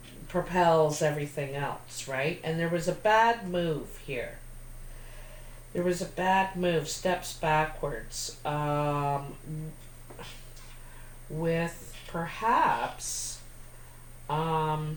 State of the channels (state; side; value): identical; both; correlation 1.00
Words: propels everything else, right? And there was a bad move here. There was a bad move, steps backwards, with perhaps, you